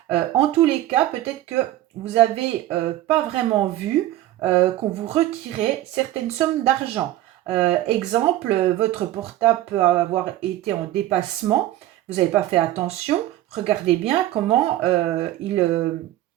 En tous les cas, peut-être que vous n'avez pas vraiment vu qu'on vous retirait certaines sommes d'argent. Exemple, votre portable peut avoir été en dépassement, vous n'avez pas fait attention. Regardez bien comment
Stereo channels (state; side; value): quieter; left; 14.5 dB